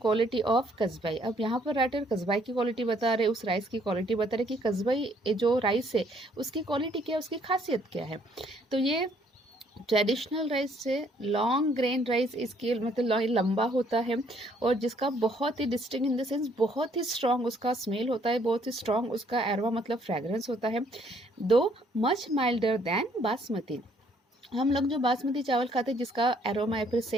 quality of Kasbai. अब यहाँ पर राइटर कस्बाई की क्वालिटी बता रहे, उस राइस की क्वालिटी बता रहे कि कस्बाई जो राइस है उसकी क्वालिटी क्या है, उसकी खासियत क्या है। तो ये ट्रेडिशनल राइस से लॉन्ग ग्रेन राइस, इसकी मतलब लंबा होता है और जिसका बहुत ही डिस्टिंक्ट इन द सेंस बहुत ही स्ट्रॉन्ग उसका स्मेल होता है, बहुत ही स्ट्रॉन्ग उसका एरोमा मतलब फ्रेगरेंस होता है, दो मच माइल्डर देन बासमती। हम लोग जो बासमती चावल खाते हैं जिसका एरोमा या फिर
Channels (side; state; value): both; normal; correlation 0.65